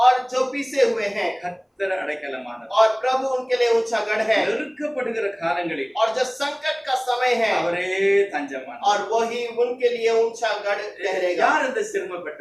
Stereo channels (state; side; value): identical; both; correlation 1.00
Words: और जो पीसे हुए हैं கர்த்தர் அடைக்கலமானவர். और प्रभु उनके लिए ऊंचा गढ़ है நெருக்கப்படுகிற காலங்களில் और जो संकट का समय है அவரே தஞ்சமானவர். और वही उनके लिए ऊंचा गढ़ ठहरेगा। யார் இந்த